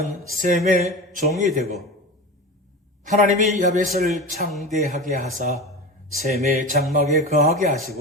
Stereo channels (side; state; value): both; normal; correlation 0.28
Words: 셈의 종이 되고 하나님이 야벳을 창대하게 하사 셈의 장막에 거하게